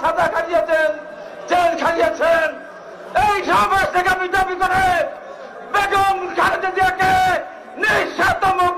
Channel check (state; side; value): identical; both; correlation 1.00